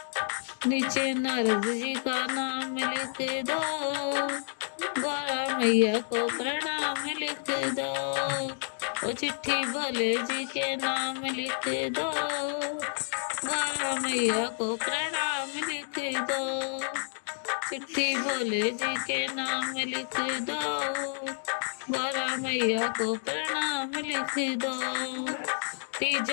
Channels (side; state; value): right; silent; 58 dB below the other